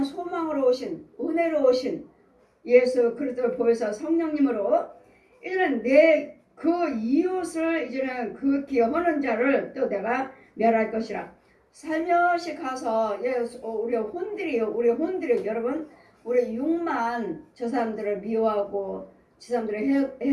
소망으로 오신 은혜로 오신 예수 그리스도를 보여서 성령님으로 이제는 내 그 이웃을 이제는 그 기여하는 자를 또 내가 멸할 것이라. 살며시 가서 우리 혼들이 여러분 우리 육만 저 사람들을 미워하고 저 사람들을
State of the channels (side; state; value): both; identical; correlation 1.00